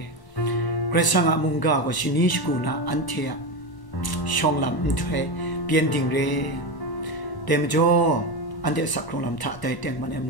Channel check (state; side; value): late; right; 1.1 ms